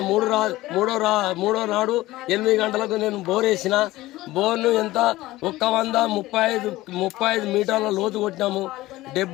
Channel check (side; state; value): right; quieter; 17.6 dB